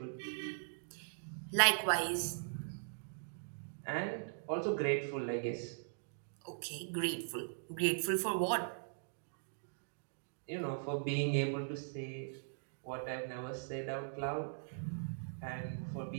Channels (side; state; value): left; silent; digital silence